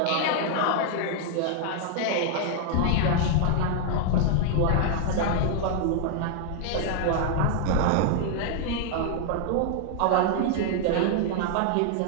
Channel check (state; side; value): different; both; correlation -0.01